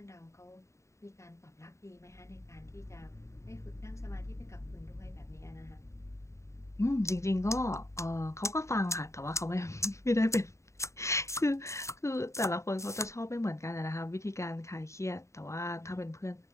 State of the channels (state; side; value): late; right; 0.14 ms